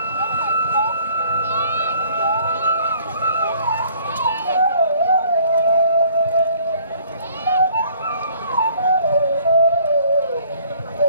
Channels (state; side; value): inverted; both; correlation -0.56